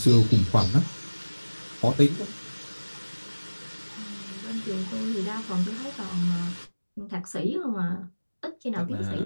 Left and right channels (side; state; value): both; inverted; correlation -1.00